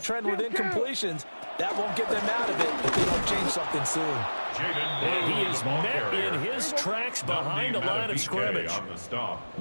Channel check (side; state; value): both; inverted; correlation -1.00